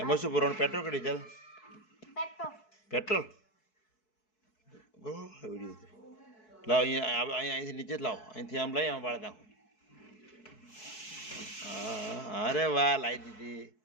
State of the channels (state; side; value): late; right; 4.6 ms